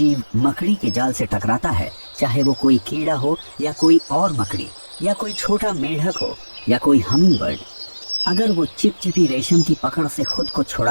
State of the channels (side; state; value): both; inverted; correlation -1.00